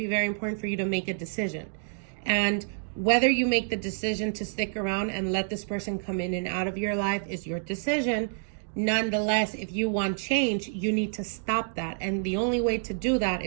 very important for you to make a decision. And whether you make the decision to stick around and let this person come in and out of your life is your decision. Nonetheless, if you want change, you need to stop that. And the only way to do that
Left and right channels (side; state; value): left; silent; digital silence